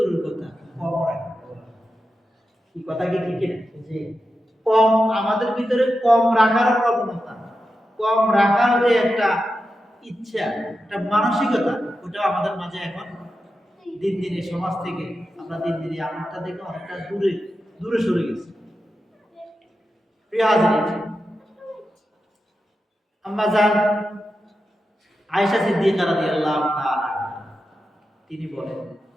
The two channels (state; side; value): normal; both; correlation 0.90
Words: কথা, কম রাখি। কি কথা কি ঠিক না? কম, আমাদের ভিতরে কম রাখার প্রবণতা, কম রাখার যে একটা ইচ্ছা, একটা মানসিকতা, ওটা আমাদের মাঝে এখন দিন দিন এই সমাজ থেকে আমরা দিন দিন এই আমলটা থেকে অনেকটা দূরে সরে গেছি। প্রিয় হাজিরিন, আম্মা জান আয়েশা সিদ্দিকা রাদিয়াল্লাহু তাআলা তিনি বলেন,